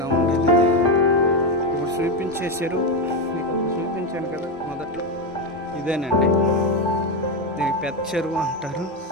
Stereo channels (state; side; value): normal; both; correlation 0.11